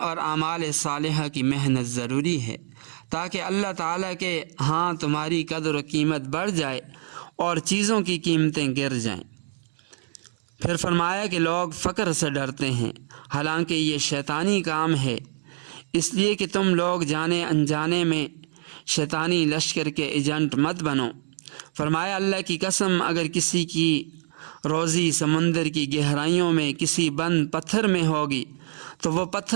اعمال صالحہ کی محنت ضروری ہے تاکہ اللہ تعالیٰ کے ہاں تمہاری قدر و قیمت بڑھ جائے اور چیزوں کی قیمتیں گر جائیں۔ پھر فرمایا کہ لوگ فقر سے ڈرتے ہیں، حالانکہ یہ شیطانی کام ہے، اس لیے کہ تم لوگ جانے انجانے میں شیطانی لشکر کے ایجنٹ مت بنو۔ فرمایا اللہ کی قسم، اگر کسی کی روزی سمندر کی گہرائیوں میں کسی بند پتھر میں ہوگی تو وہ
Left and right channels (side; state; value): left; silent; digital silence